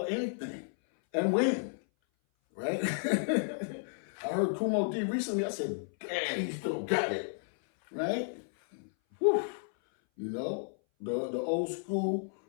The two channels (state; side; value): silent; right; 56 dB below the other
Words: or anything, and win, right? I heard Kumo D recently. I said, damn, he still got it, right? Whew. You know, the old school